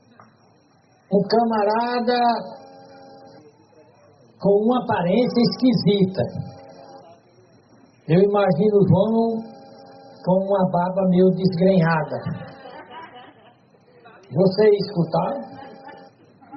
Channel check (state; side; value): identical; both; correlation 1.00